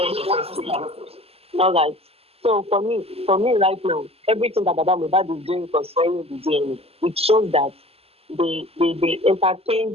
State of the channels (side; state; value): left; late; 0.29 ms